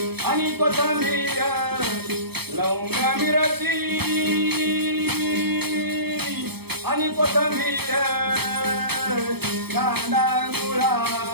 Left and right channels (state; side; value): late; left; 0.97 ms